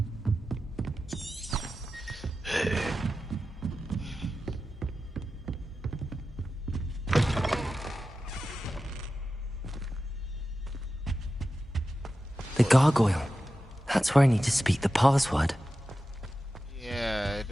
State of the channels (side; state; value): both; normal; correlation 0.93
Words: The gargoyle. That's where I need to speak the password. Yeah, it